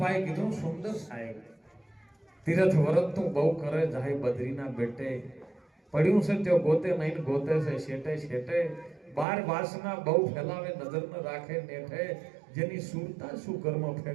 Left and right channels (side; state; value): left; drops out; at 9.2 s